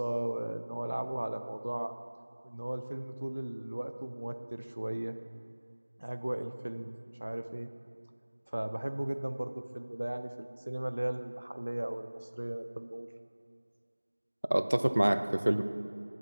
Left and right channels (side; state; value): both; inverted; correlation -1.00